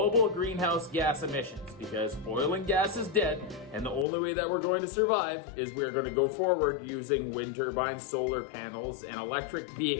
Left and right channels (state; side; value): drops out; right; at 4.0 s